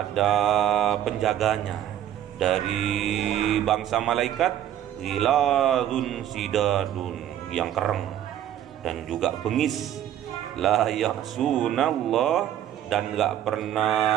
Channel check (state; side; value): quieter; left; 11.3 dB